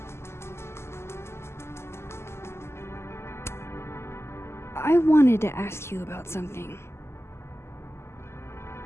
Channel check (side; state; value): right; late; 0.12 ms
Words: I wanted to ask you about something.